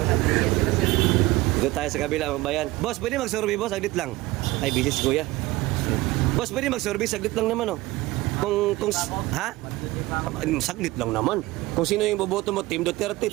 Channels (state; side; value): quieter; left; 19.4 dB